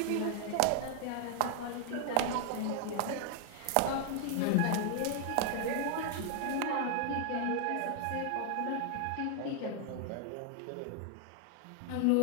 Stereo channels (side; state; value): both; different; correlation 0.00